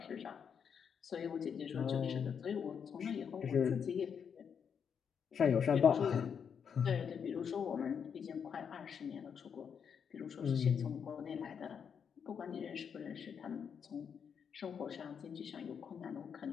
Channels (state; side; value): quieter; right; 7.2 dB